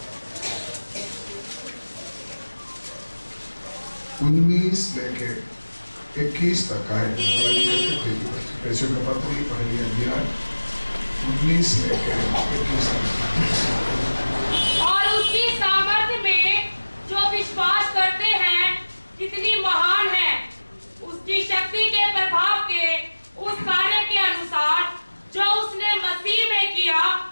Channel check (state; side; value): inverted; both; correlation -1.00